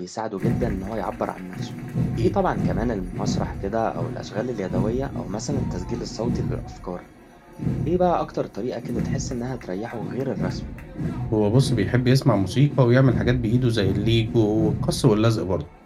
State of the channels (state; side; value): identical; both; correlation 1.00